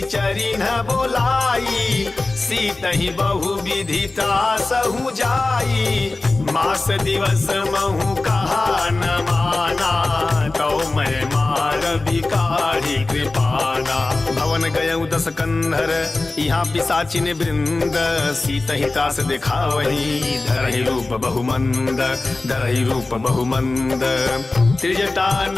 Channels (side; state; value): right; quieter; 3.2 dB